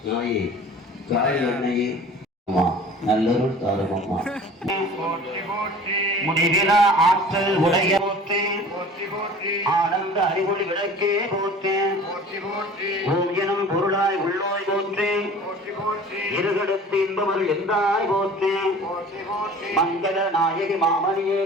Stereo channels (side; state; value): both; normal; correlation 0.44